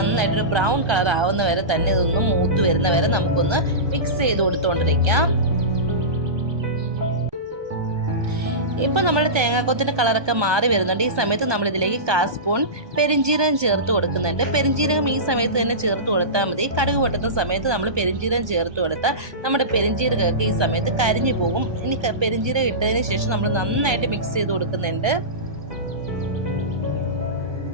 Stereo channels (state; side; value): late; left; 1.2 ms